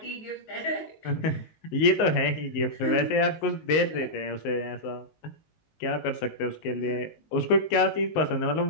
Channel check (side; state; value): right; late; 19 ms